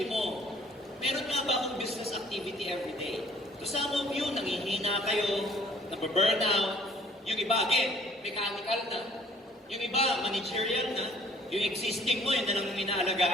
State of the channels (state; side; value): normal; both; correlation 0.56